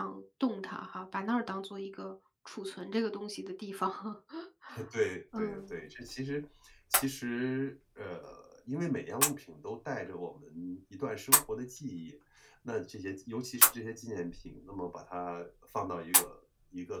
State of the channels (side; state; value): both; identical; correlation 1.00